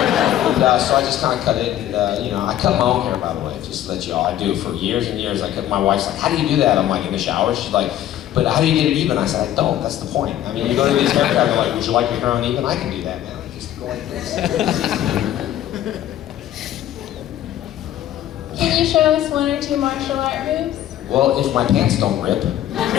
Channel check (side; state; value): right; quieter; 12.1 dB